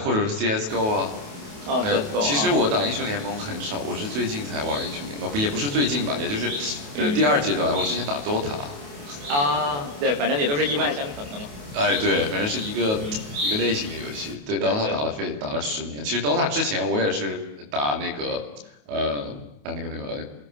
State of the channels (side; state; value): left; late; 28 ms